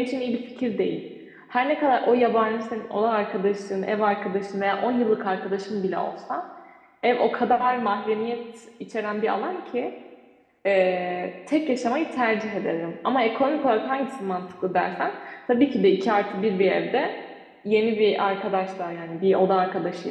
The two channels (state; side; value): identical; both; correlation 1.00